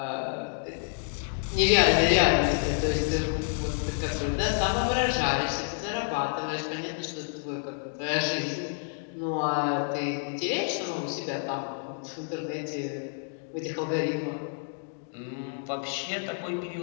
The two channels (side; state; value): right; silent; 59 dB below the other